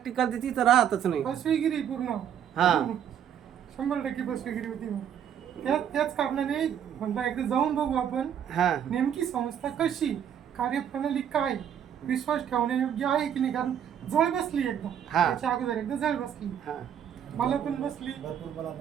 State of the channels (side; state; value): left; quieter; 9.1 dB